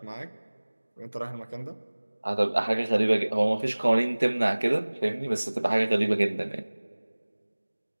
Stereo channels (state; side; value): inverted; both; correlation -1.00